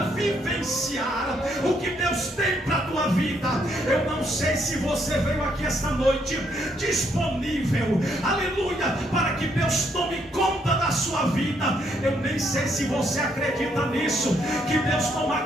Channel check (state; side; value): normal; both; correlation 0.73